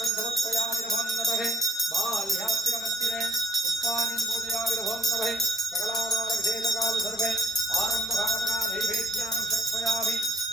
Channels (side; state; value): both; normal; correlation 0.70